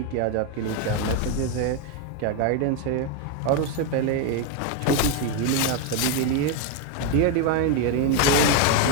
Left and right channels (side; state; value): both; different; correlation 0.02